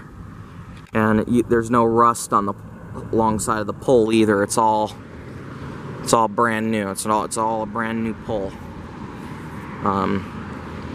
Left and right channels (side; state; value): both; identical; correlation 1.00